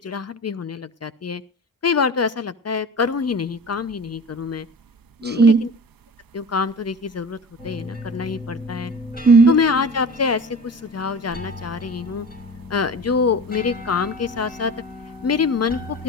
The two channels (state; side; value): normal; both; correlation 0.36